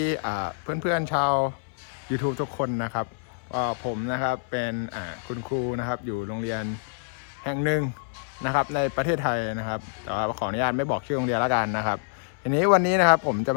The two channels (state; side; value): silent; right; 60 dB below the other